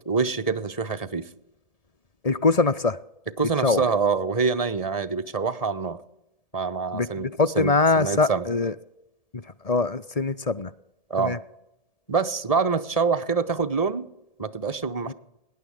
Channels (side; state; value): right; late; 1.7 ms